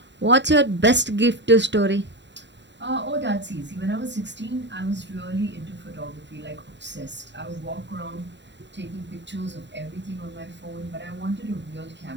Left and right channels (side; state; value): left; late; 0.52 ms